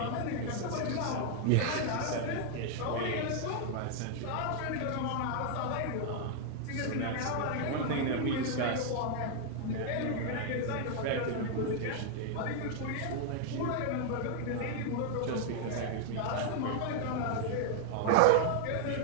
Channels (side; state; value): both; different; correlation 0.00